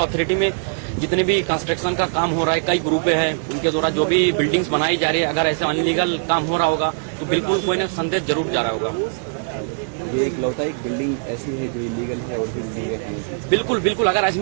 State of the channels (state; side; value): silent; left; 65 dB below the other